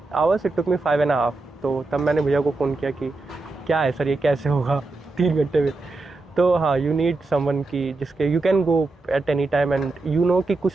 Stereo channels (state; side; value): quieter; left; 3.3 dB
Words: hours, it took me 5.5। तो तब मैंने भैया को फ़ोन किया कि क्या है सर, ये कैसे होगा 3 घंटे में। तो हाँ, यू नीड समवन की जिसके you can go at any time and you know कि